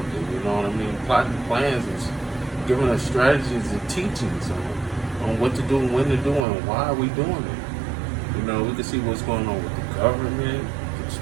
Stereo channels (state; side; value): drops out; left; at 6.5 s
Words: You know what I mean? Plotting plans and giving us strategies and teachings on what to do and when to do and why are we doing it. You know, we can see what's going on with the government,